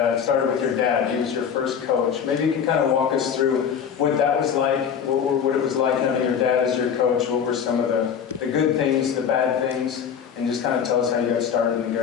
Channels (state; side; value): quieter; right; 7.6 dB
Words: started with your dad. He was your first coach. Maybe you can kind of walk us through what that was like, what it was like having your dad as your coach. What were some of the good things, the bad things, and just kind of tell us how you got started in the